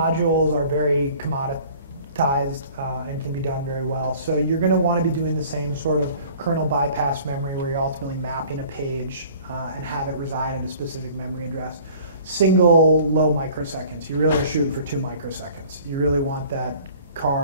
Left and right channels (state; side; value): inverted; both; correlation -0.50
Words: are very commoditized and can be done very well. So you're going to want to be doing the same sort of kernel bypass memory where you're ultimately mapping a page and have it reside in a specific memory address. Single low microseconds. You really are shooting for 2 microseconds. You really want that